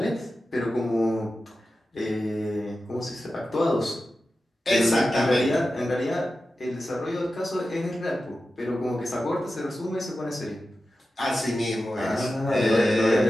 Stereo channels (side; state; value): both; normal; correlation 0.93